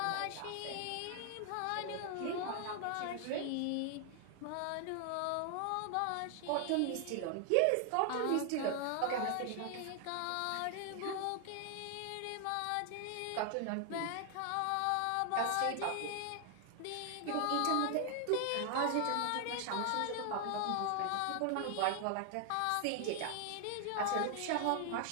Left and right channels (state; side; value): different; both; correlation 0.00